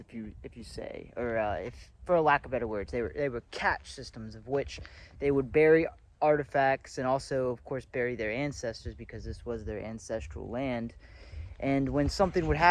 if you say, or if for a lack of better words, they were catch systems of which they would bury artifacts and also, of course, bury their ancestors because this was their ancestral land. And when something would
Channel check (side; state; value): both; identical; correlation 1.00